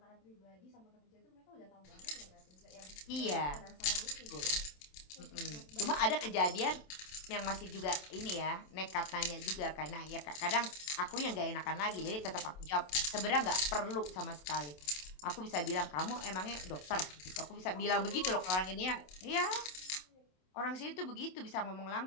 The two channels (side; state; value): right; late; 27 ms